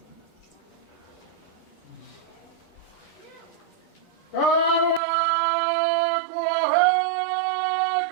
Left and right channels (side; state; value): left; drops out; at 5.0 s